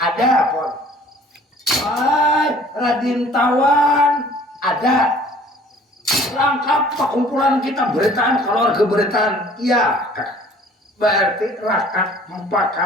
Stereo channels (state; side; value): normal; both; correlation 0.52